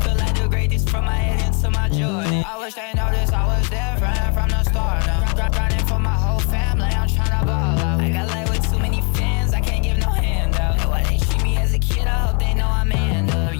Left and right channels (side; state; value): right; quieter; 35.6 dB